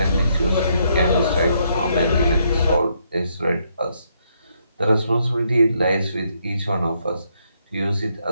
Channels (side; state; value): both; inverted; correlation -0.74